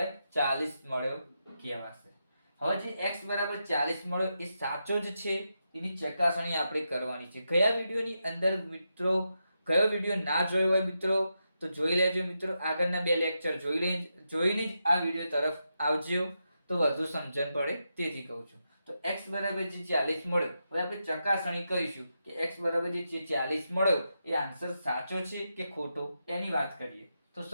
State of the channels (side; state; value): both; inverted; correlation -0.86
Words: 40 મળ્યો કહેવાશે. હવે જે x બરાબર 40 મળ્યો એ સાચો જ છે એની ચકાસણી આપણે કરવાની છે. કયા વિડિયોની અંદર મિત્રો, કયો વિડિયો ના જોયો હોય મિત્રો તો જોઈ લેજો મિત્રો. આગળના 2 લેક્ચર જોઈને જ આ વિડિયો તરફ આવજો તો વધુ સમજણ પડે, તેથી કહું છું. તો x બરાબર જે 40 મળ્યો, હવે આપણે ચકાસણી કરીશું કે x બરાબર જે 40 મળ્યો એ આન્સર સાચો છે કે ખોટો, એની વાત કરીએ. તો